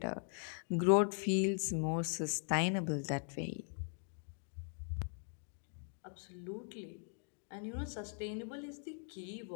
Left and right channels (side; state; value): right; silent; 51 dB below the other